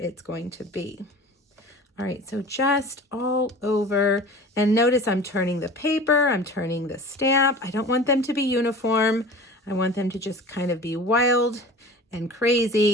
going to be. All right, so just all over. And notice I'm turning the paper, I'm turning the stamp. I don't want them to be uniform. I want them to just kind of be wild and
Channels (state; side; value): normal; both; correlation 0.39